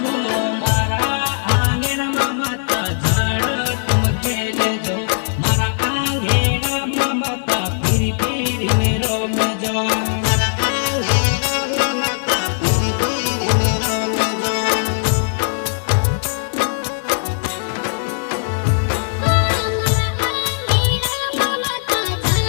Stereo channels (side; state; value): right; silent; digital silence